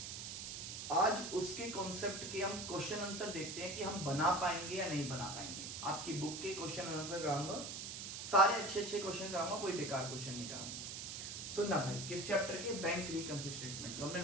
आज उसके कॉन्सेप्ट के हम क्वेश्चन आंसर देखते हैं कि हम बना पाएंगे या नहीं बना पाएंगे। आपकी बुक के क्वेश्चन आंसर कराऊंगा, सारे अच्छे अच्छे क्वेश्चन कराऊंगा, कोई बेकार क्वेश्चन नहीं कराऊंगा। सुनना भाई, किस चैप्टर के? बैंक रिकन्सिलिएशन स्टेटमेंट, जो हमने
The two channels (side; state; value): right; noise; hiss, 6 dB below the sound